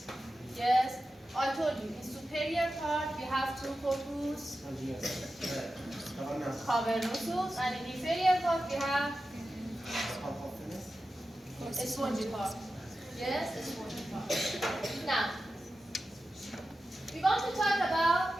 Yes, I told you, in superior part we have 2 corpus cavernosus, and in inferior part we have a spongy part. Yes, a spongy part. Now, we want to talk about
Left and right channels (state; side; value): normal; both; correlation 0.93